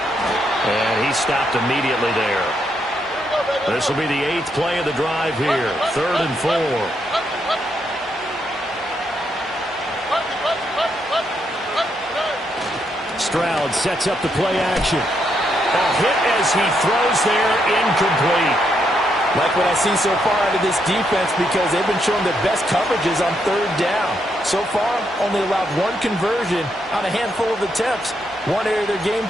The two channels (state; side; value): normal; both; correlation 0.78